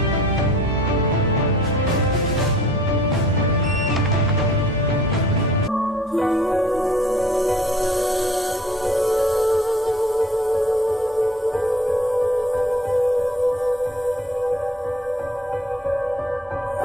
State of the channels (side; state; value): both; normal; correlation 0.52